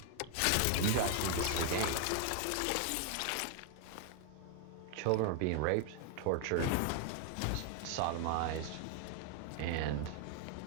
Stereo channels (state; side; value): different; both; correlation 0.00